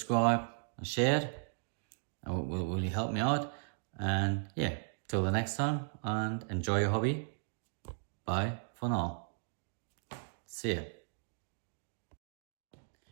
and share it. It will really help me out. And yeah, till the next time, and enjoy your hobby. Bye for now. See ya.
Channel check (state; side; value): silent; left; digital silence